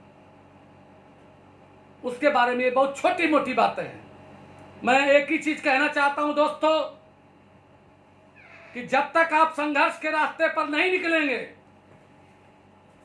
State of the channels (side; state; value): both; identical; correlation 1.00